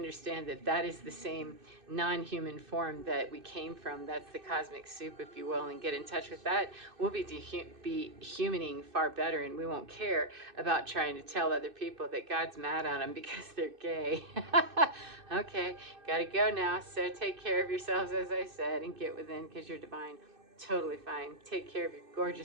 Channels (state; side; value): late; left; 2.6 ms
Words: that that is the same non-human form that we came from. That's the cosmic soup, if you will, and get in touch with that. We'll be humaning far better, and we won't care about trying to tell other people that God's mad at them because they're gay. Okay, gotta go now. So take care of yourselves, as I said, and get within, because you're divine. Totally fine. Take care of your